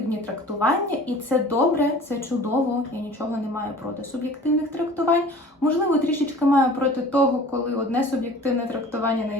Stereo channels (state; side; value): normal; both; correlation 0.44